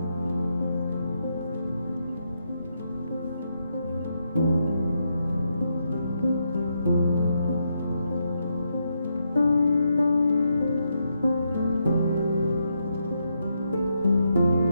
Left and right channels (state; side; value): inverted; both; correlation -0.81